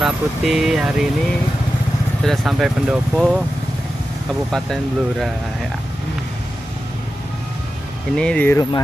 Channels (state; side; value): normal; both; correlation 0.92